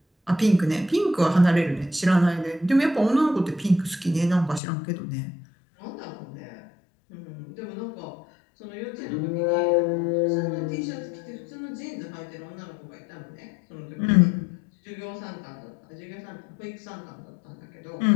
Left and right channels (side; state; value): right; drops out; at 4.6 s